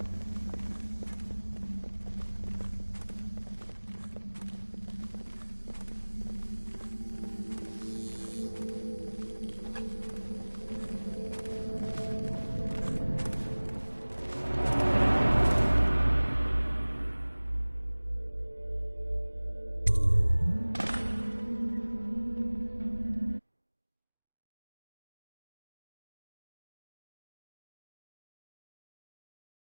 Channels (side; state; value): both; inverted; correlation -1.00